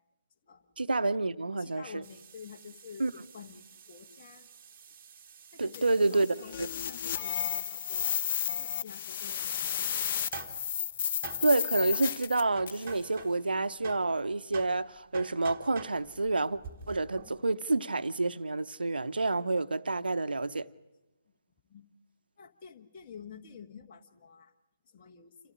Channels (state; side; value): inverted; both; correlation -0.83